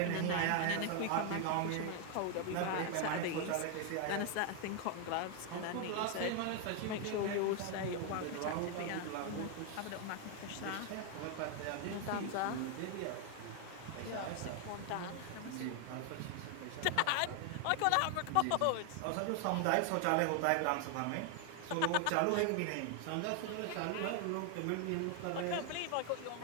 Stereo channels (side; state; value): both; different; correlation 0.00